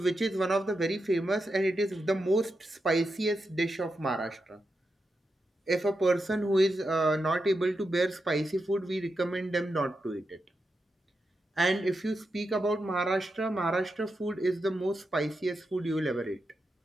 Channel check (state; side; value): normal; both; correlation 0.87